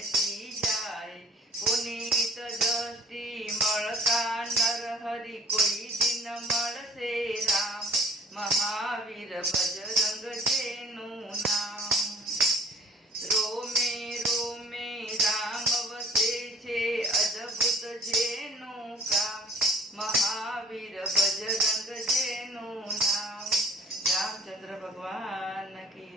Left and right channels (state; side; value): normal; both; correlation 0.52